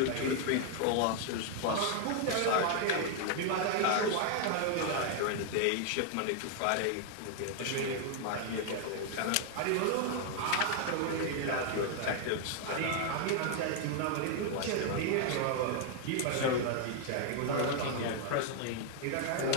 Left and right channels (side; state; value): both; different; correlation 0.00